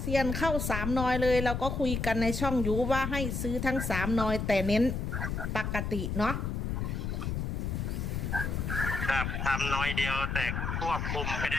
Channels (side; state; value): left; noise; rumble, 2 dB below the sound